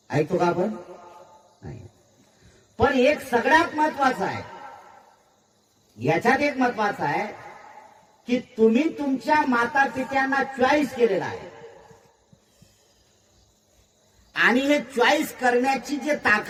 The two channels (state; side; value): identical; both; correlation 1.00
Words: ऐकतो का आपण? नाही. पण एक सगळ्यात महत्वाचं आहे, याच्यात एक महत्वाचं आहे की तुम्ही तुमच्या माता पित्यांना चॉईस केलेला आहे. आणि हे चॉईस करण्याची जे